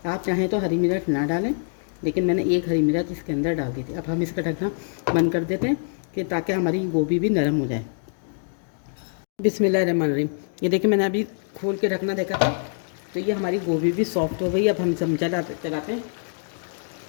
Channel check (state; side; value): silent; right; digital silence